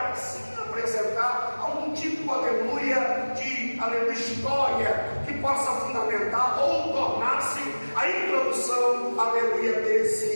apresentar algum tipo, aleluia, de história que possa fundamentar ou tornar-se a introdução, aleluia,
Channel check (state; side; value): inverted; both; correlation -1.00